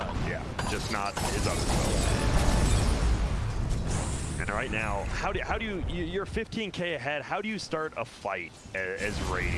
Yeah, just not his other spells. And right now, how do you, you're 15K ahead, how do you start a fight as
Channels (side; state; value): both; identical; correlation 1.00